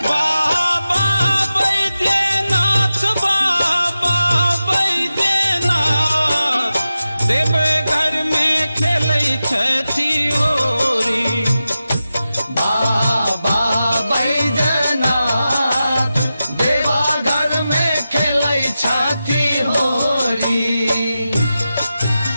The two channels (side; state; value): both; inverted; correlation -0.92